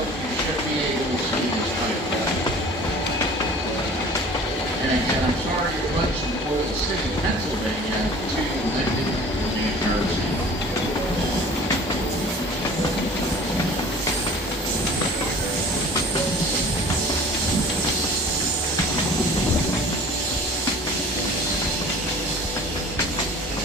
you should be able to see this pipeline. And again, I'm sorry to bunch from Oil City, Pennsylvania to Linden, New Jersey.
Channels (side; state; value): both; normal; correlation 0.45